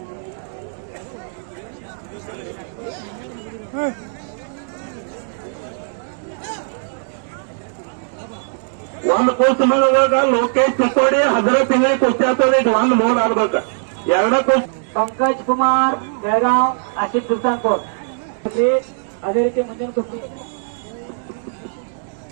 ಒಂದು ಕುಸ್ತಿ ಮಾಡುವಾಗ ಲೋಕೇಶ್ ಚಿಕ್ಕೋಡಿ, ಹಜರತ್ ಇಂಗ್ಳಿ ಕುಸ್ತಿ ಆಗ್ತದೆ. ಇದು 1 ಮೂರ್ ಆಗ್ಬೇಕ. 2 ಕುಸ್ತಿ पंकज कुमार बेळगाव, आशिष सुलतानपूर. ಅದೇ ರೀತಿ ಮುಂದಿನ ಕುಸ್ತಿ.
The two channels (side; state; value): left; silent; digital silence